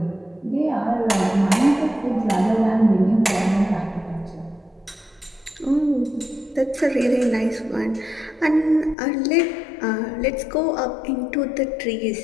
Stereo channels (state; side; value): drops out; right; at 9.0 s